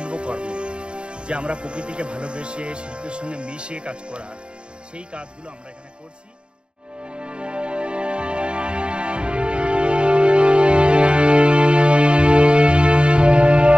যে আমরা প্রকৃতিকে ভালোবেসে শিল্পের সঙ্গে মিশে কাজ করা সেই কাজগুলো আমরা এখানে করছি।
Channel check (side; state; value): left; late; 0.052 ms